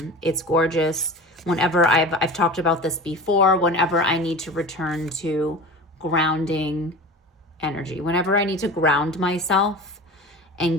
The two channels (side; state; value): both; normal; correlation 0.33